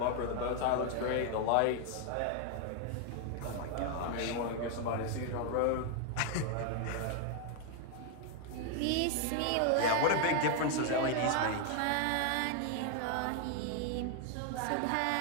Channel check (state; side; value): different; both; correlation 0.00